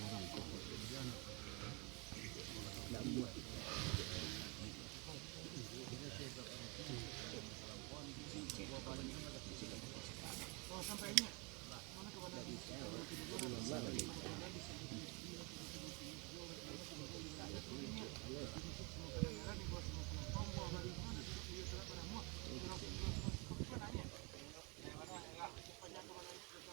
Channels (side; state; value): left; quieter; 30.4 dB